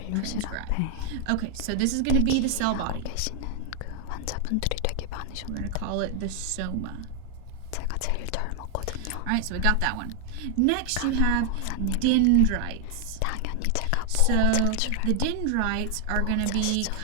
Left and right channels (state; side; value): different; both; correlation 0.00